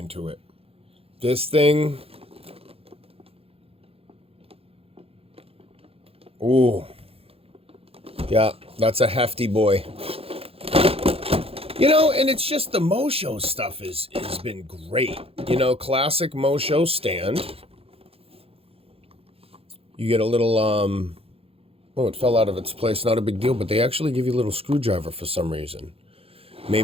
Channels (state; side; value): late; left; 0.28 ms